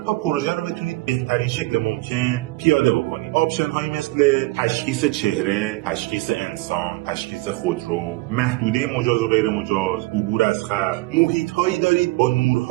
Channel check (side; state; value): left; quieter; 21.2 dB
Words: تا پروژه رو بتونید بهترین شکل ممکن پیاده بکنید. آپشن هایی مثل تشخیص چهره، تشخیص انسان، تشخیص خودرو، محدوده مجاز و غیر مجاز، عبور از خط. محیط هایی دارید با